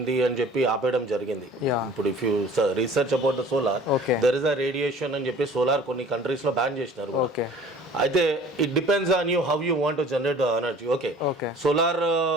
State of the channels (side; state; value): both; normal; correlation 0.48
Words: అని చెప్పి ఆపేయడం జరిగింది. ఇప్పుడు if you research about the solar, there is a radiation అని చెప్పి సోలార్ కొన్ని కంట్రీస్ లో బ్యాన్ చేసినారు. అయితే it depends on you how you want to generate energy. Okay, solar